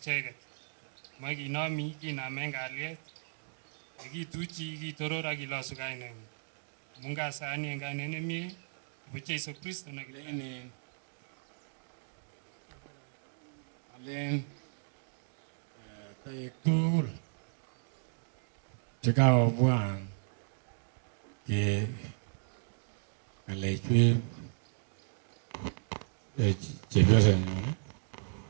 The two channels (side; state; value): left; silent; digital silence